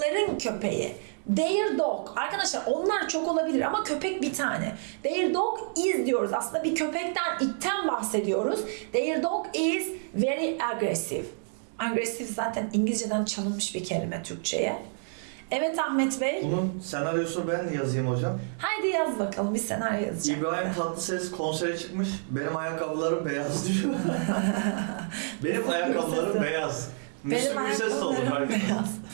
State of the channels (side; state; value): left; silent; 59 dB below the other